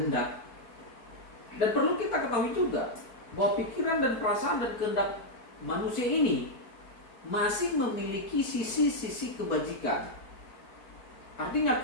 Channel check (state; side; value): late; right; 4.5 ms